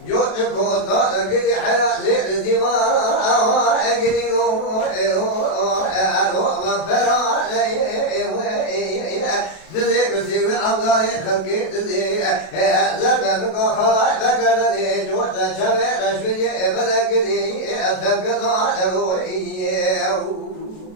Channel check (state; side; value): late; right; 32 ms